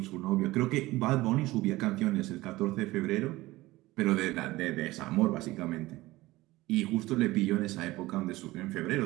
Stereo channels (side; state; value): left; quieter; 18.7 dB